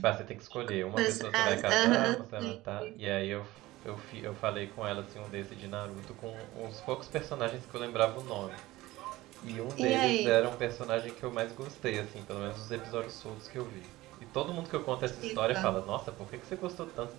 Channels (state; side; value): quieter; left; 18.1 dB